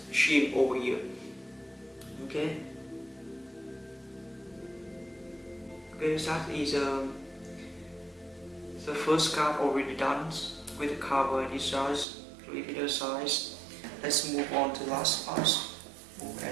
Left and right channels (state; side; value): drops out; left; at 12.1 s